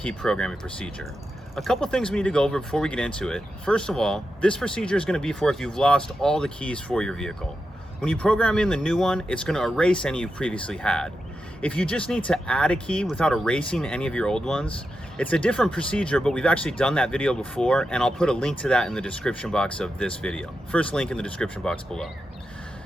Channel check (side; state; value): both; normal; correlation 0.88